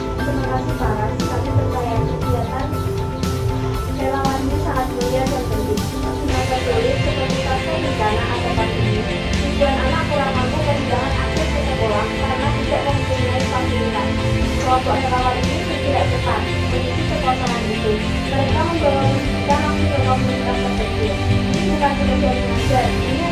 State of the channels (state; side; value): identical; both; correlation 1.00